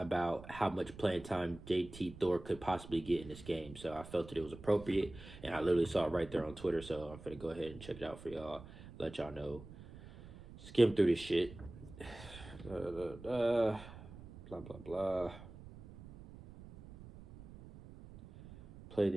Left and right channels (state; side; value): noise; right; rumble, 16 dB below the sound